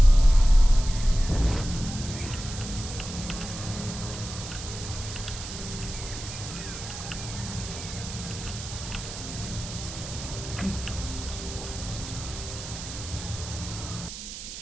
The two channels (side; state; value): right; noise; hiss, 10 dB below the sound